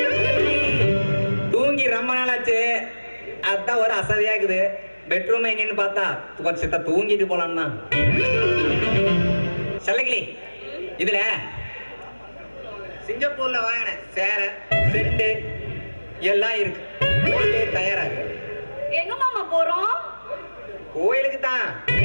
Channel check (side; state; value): both; inverted; correlation -1.00